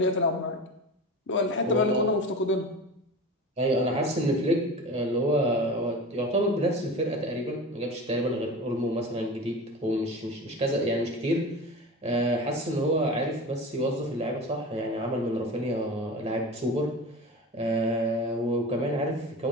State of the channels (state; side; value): normal; both; correlation 0.31